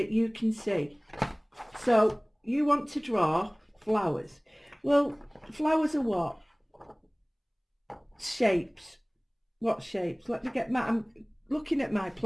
you can see. So you want to draw flowers. Well, flowers are what? Shapes. What shapes? Let me get my, I'm looking at my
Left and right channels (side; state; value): both; identical; correlation 1.00